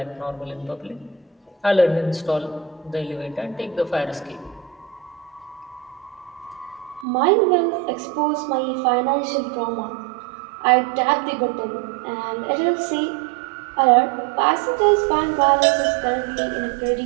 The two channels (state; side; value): drops out; left; at 7.1 s